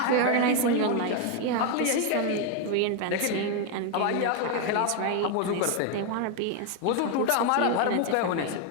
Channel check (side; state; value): both; different; correlation 0.01